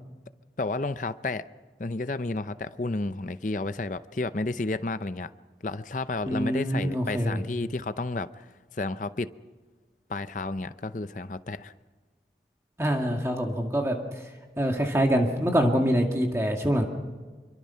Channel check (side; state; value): both; normal; correlation 0.73